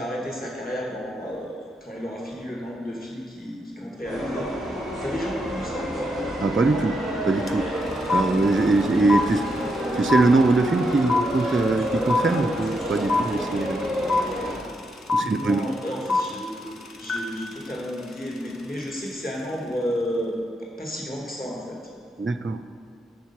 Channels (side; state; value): both; normal; correlation 0.81